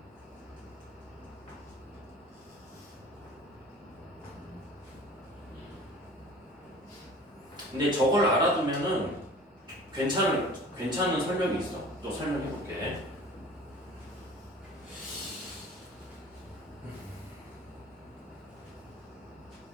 근데 저걸 알아두면은 괜찮은 설명이 있어. 또 설명해 볼게.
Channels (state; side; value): normal; both; correlation 0.44